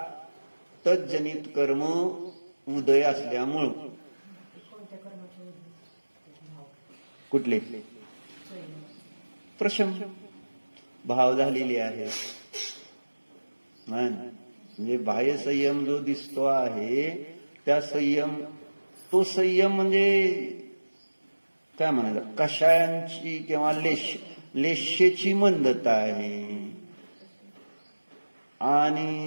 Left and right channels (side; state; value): both; inverted; correlation -1.00